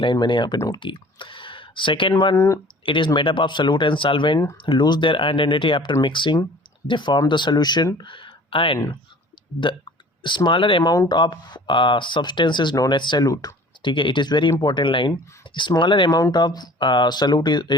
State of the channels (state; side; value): normal; both; correlation 0.47